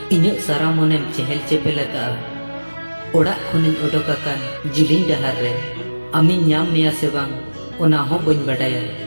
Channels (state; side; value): inverted; both; correlation -1.00